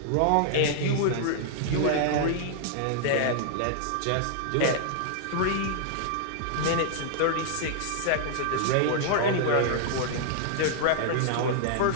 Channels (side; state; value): both; different; correlation -0.01